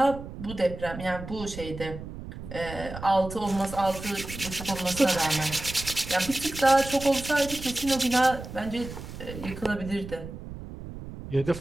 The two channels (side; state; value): right; noise; rumble, 11 dB below the sound